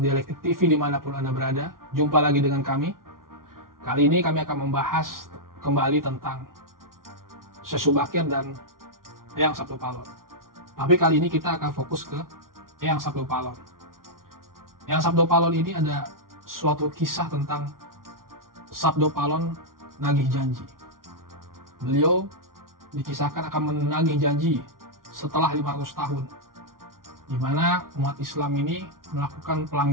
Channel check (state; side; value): late; left; 0.92 ms